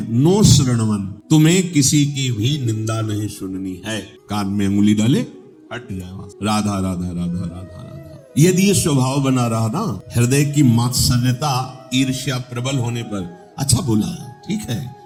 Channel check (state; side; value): identical; both; correlation 1.00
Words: नो श्रवणवन, तुम्हें किसी की भी निंदा नहीं सुननी है। कान में अंगुली डाले हट जाए वहां, राधा राधा राधा राधा राधा। यदि ये स्वभाव बना रहा ना, हृदय की मात्सर्यता ईर्ष्या प्रबल होने पर, अच्छा बोला ठीक है